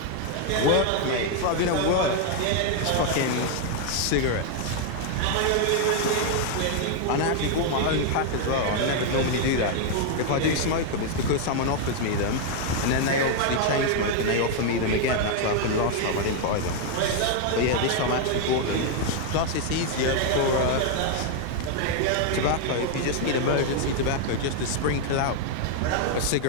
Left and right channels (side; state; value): both; different; correlation 0.00